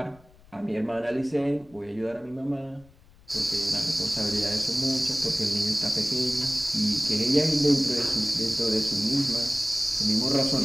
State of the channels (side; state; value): left; noise; rumble, 27 dB below the sound